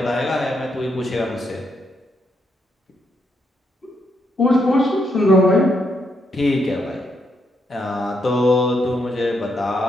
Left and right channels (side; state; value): both; normal; correlation 0.78